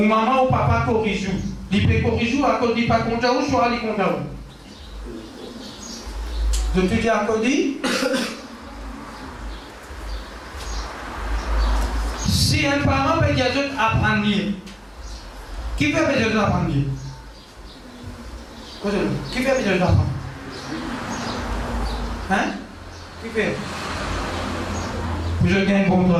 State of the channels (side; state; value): both; identical; correlation 1.00